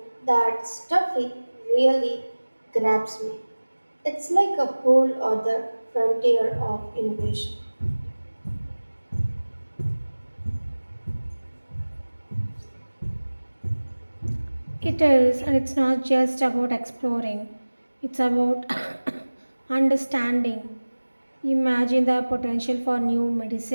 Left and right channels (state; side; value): inverted; both; correlation -1.00